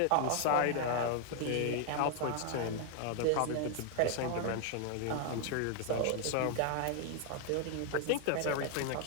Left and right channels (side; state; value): both; different; correlation 0.00